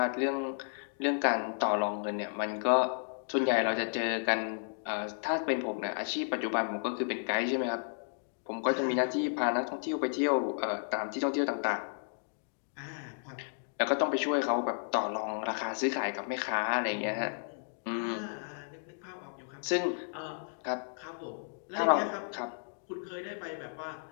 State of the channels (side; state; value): right; silent; digital silence